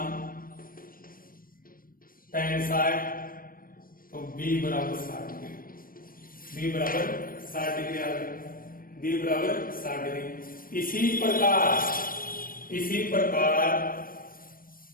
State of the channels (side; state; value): right; late; 0.41 ms